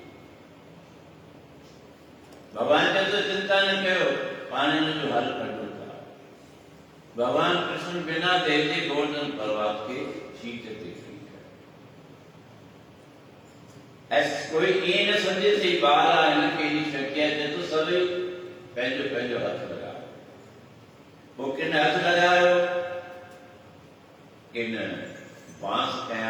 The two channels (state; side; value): identical; both; correlation 1.00